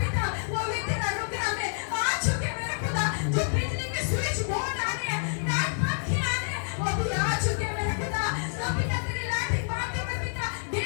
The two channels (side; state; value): right; silent; digital silence